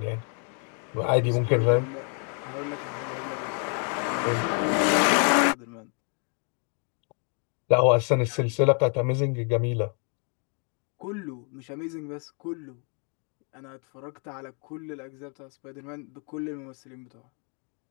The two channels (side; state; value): right; quieter; 39.9 dB